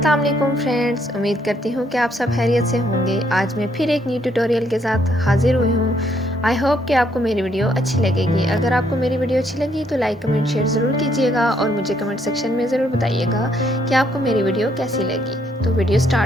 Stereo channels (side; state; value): both; normal; correlation 0.71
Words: वालेकुम फ्रेंड्स, उम्मीद करती हूँ कि आप सब खैरियत से होंगे। आज मैं फिर एक न्यू ट्यूटोरियल के साथ हाजिर हुई हूँ। आई होप कि आपको मेरी वीडियो अच्छी लगेगी। अगर आपको मेरी वीडियो अच्छी लगी तो लाइक कमेंट शेयर ज़रूर कीजिएगा और मुझे कमेंट सेक्शन में ज़रूर बताइएगा कि आपको मेरी वीडियो कैसी लगी। तो वीडियो